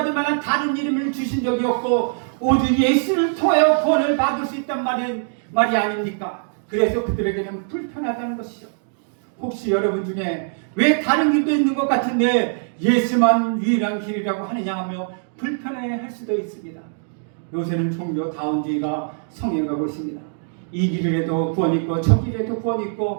만한 다른 이름을 주신 적이 없고 오직 예수를 통하여 구원을 받을 수 있단 말이 아닙니까? 그래서 그들에게는 불편하다는 것이죠. 혹시 여러분 중에 왜 다른 길도 있는 것 같은데 예수만 유일한 길이라고 하느냐 하며 불편해할 수도 있습니다. 요새는 종교다운주의가 성행하고 있습니다. 이 길을 해도 구원 있고 저 길을 해도 구원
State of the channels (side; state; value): left; silent; digital silence